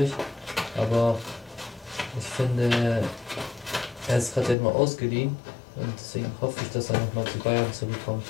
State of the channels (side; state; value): right; drops out; at 4.5 s